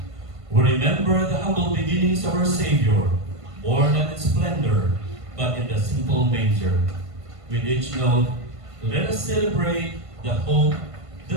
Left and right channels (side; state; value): left; late; 1.5 ms